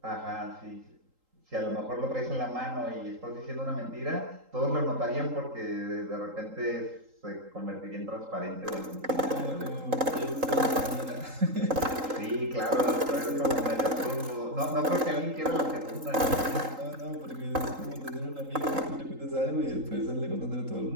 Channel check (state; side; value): late; left; 3.8 ms